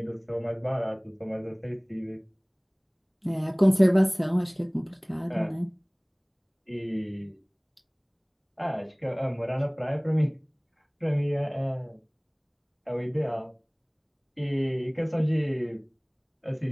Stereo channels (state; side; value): identical; both; correlation 1.00